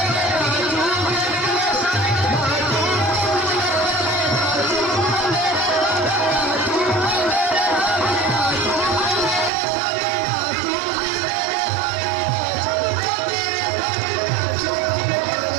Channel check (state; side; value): drops out; left; at 9.5 s